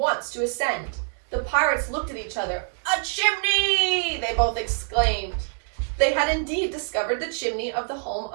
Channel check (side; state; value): left; silent; 59 dB below the other